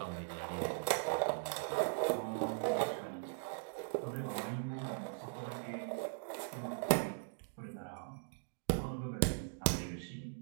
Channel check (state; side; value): silent; left; digital silence